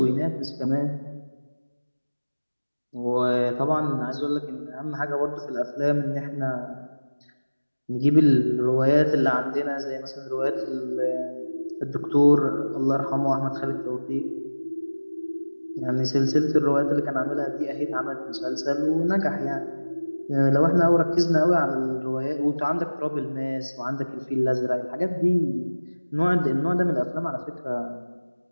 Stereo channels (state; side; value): inverted; both; correlation -1.00